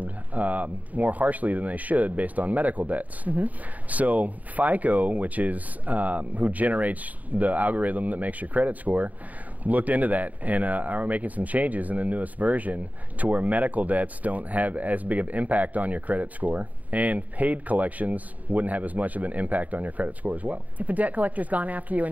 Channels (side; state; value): left; late; 0.074 ms